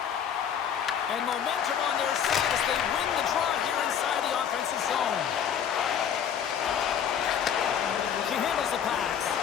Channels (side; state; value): right; quieter; 8.5 dB